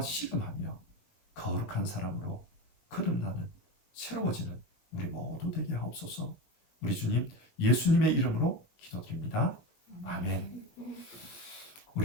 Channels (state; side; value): late; right; 19 ms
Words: 씨름하며 거룩한 사람으로 거듭나는 새로워지는 우리 모두 되게 하옵소서. 우리 주님 예수님의 이름으로 기도드립니다. 아멘.